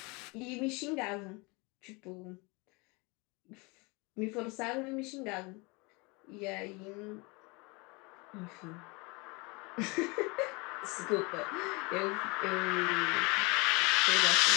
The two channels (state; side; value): quieter; right; 27.6 dB